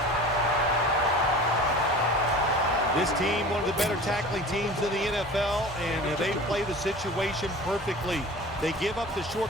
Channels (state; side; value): normal; both; correlation 0.39